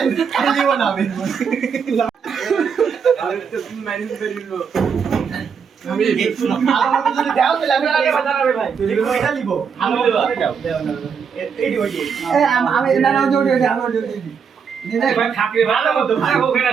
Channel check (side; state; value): left; quieter; 6.5 dB